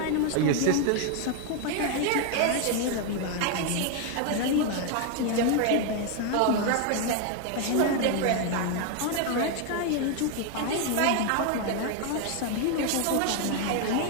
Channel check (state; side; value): different; both; correlation 0.01